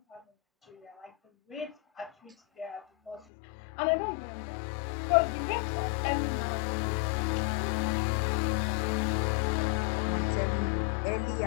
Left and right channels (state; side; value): drops out; right; at 3.2 s